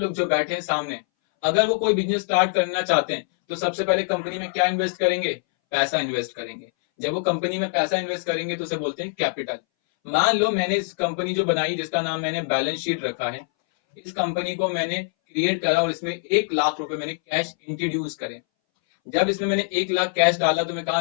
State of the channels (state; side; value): silent; right; 61 dB below the other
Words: जो बैठे हैं सामने, अगर वो कोई बिजनेस स्टार्ट करना चाहते हैं तो सबसे पहले कंपनी में क्या इन्वेस्ट करेंगे? पैसा इन्वेस्ट करेंगे। जब वो कंपनी में पैसा इन्वेस्ट करेंगे तो उसे बोलते हैं कैपिटल। मान लो मैंने इस कंपनी जो बनाई, जिसका नाम मैंने बैलेंस शीट रखा है, इस कंपनी को मैंने क्रिएट करा और इसमें 1 लाख रुपए मैंने कैश इंट्रोड्यूस करे। जब इसमें मैंने 1 लाख कैश डाला तो मैं